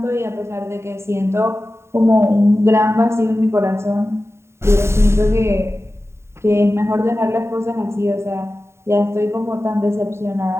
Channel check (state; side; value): late; left; 0.13 ms